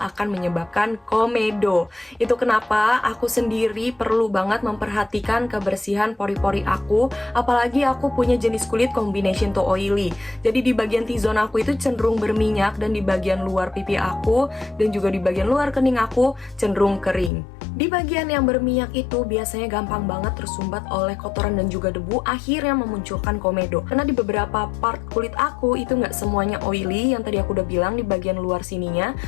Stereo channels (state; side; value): drops out; right; at 17.3 s